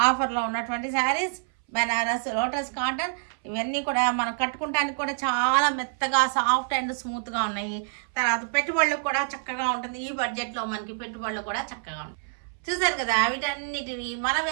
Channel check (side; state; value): left; silent; 60 dB below the other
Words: ఉన్నటువంటి శారీస్ బెనారస్ లోటస్ కాటన్. ఇవన్నీ కూడా మనం కట్టుకుంటానికి కూడా చాలా మెత్తగా సాఫ్ట్ అండ్ స్మూత్గా ఉన్నాయి. తర్వాత పెట్టుబడులకు కూడా చక్కగా ఉంటుంది. ఈ బడ్జెట్లో మనకి పెట్టుబడులు కూడా చక్కగా ఉంటాయి. చూసారు కదా, వీటన్నిటిని మన